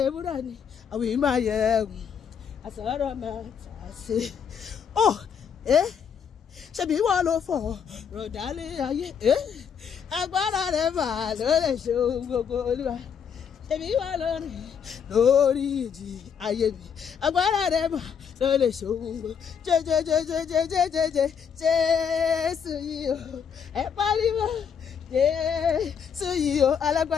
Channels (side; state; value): right; quieter; 7.3 dB